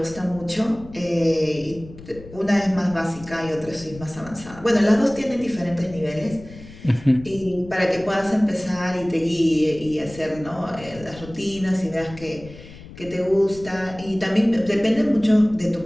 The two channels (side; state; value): left; noise; rumble, 17 dB below the sound